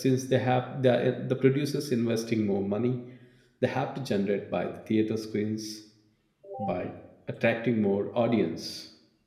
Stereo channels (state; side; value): identical; both; correlation 1.00